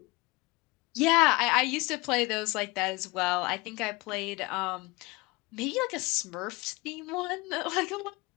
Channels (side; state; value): right; quieter; 23.6 dB